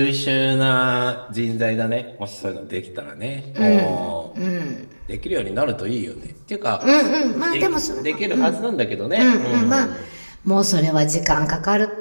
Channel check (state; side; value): inverted; both; correlation -1.00